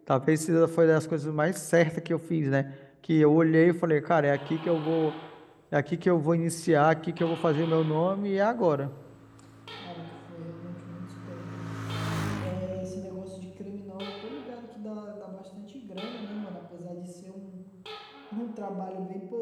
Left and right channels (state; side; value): identical; both; correlation 1.00